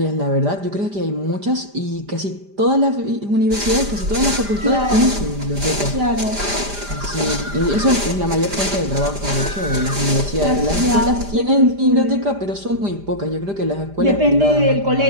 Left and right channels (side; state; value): left; late; 5.0 ms